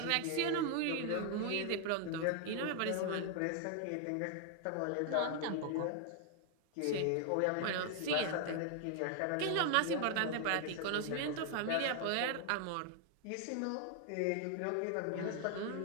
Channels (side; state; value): both; different; correlation 0.00